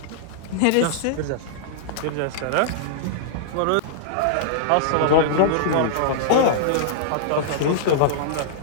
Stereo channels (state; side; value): different; both; correlation -0.02